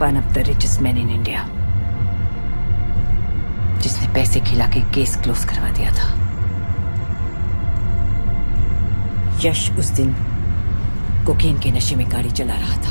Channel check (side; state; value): both; inverted; correlation -1.00